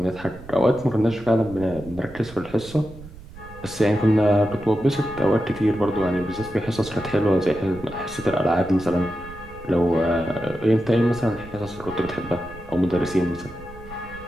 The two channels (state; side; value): noise; right; rumble, 17 dB below the sound